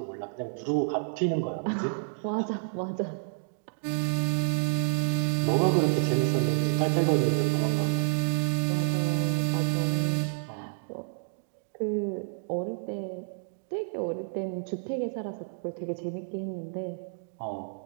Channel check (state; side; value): silent; left; digital silence